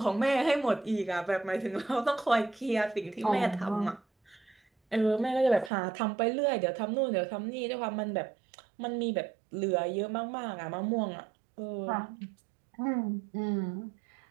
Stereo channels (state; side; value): drops out; left; at 5.7 s